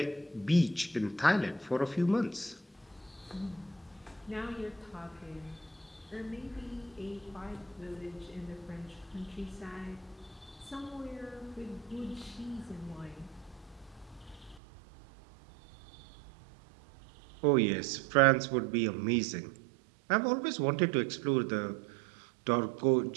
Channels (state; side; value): drops out; left; at 14.6 s